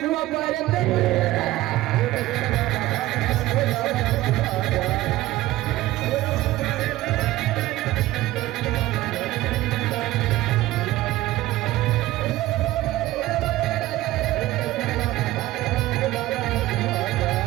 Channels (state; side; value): quieter; left; 16.6 dB